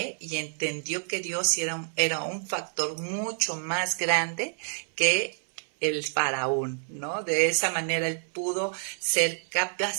y entendió que Dios era un factor mucho más grande que el faraón, ¿no? De esa manera él pudo ser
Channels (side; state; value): left; silent; 59 dB below the other